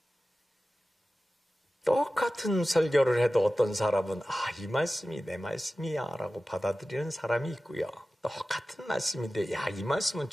똑같은 설교를 해도 어떤 사람은 이 말씀이 내 말씀이야 라고 받아들이는 사람이 있고요. 똑같은 말씀인데 이 말씀은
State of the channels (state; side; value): normal; both; correlation 0.95